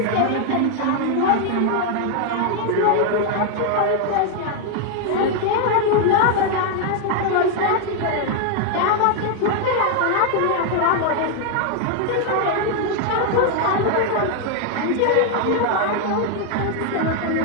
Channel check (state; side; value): different; both; correlation 0.00